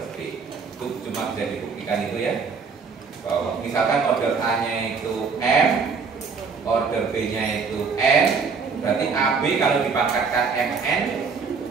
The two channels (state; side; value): quieter; left; 5.3 dB